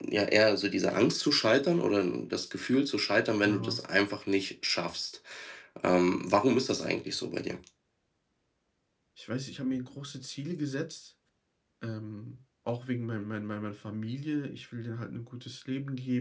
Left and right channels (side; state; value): both; identical; correlation 1.00